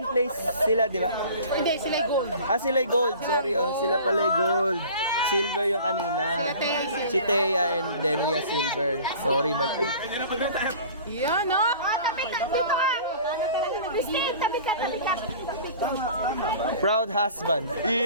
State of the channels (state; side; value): inverted; both; correlation -0.43